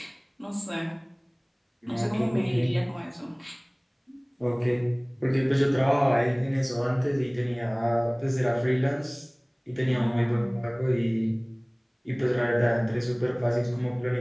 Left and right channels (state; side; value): identical; both; correlation 1.00